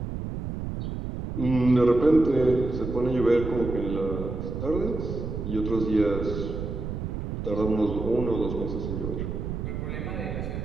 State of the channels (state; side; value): noise; right; rumble, 5 dB below the sound